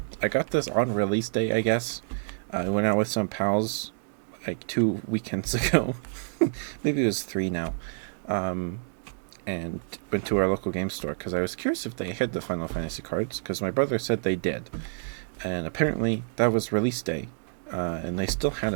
I got this on release day, I guess. I went out with some pals like 2 weekends ago. Maybe it was 3 now. And went to our local game store because I was curious if they had the Final Fantasy cards, because my brother said they did. And apparently that was release day, and they still had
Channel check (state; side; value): silent; left; digital silence